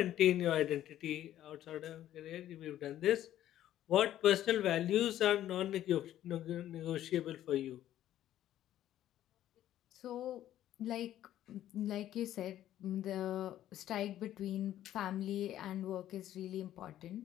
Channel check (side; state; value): right; quieter; 12.4 dB